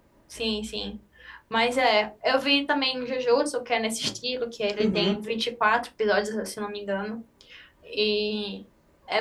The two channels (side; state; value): both; identical; correlation 1.00